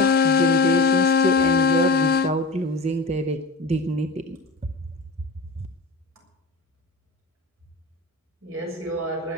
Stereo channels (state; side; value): quieter; right; 3.2 dB